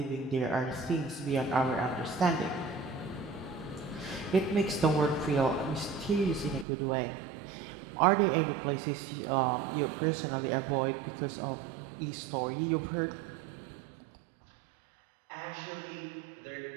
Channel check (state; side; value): drops out; left; at 6.7 s